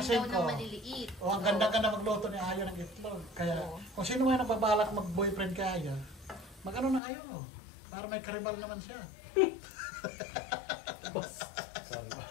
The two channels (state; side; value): drops out; right; at 7.0 s